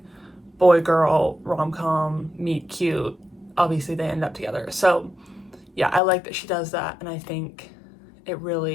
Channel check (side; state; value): right; drops out; at 6.0 s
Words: boy girl rom-com meet cute. Obviously they end up together. So yeah, I like that she does that, and I think it